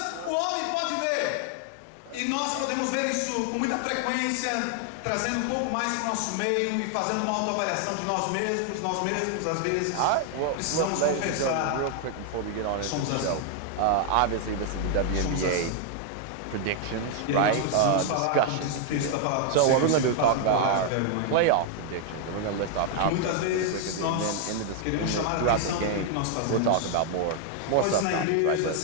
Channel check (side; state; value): both; different; correlation 0.00